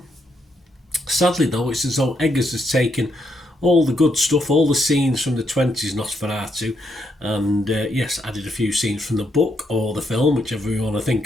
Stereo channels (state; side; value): normal; both; correlation 0.78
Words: Sadly though, it's as though Eggers has taken all the good stuff, all the scenes from the 20s Nosferatu, and added a few scenes from the book or the film, whichever you want to think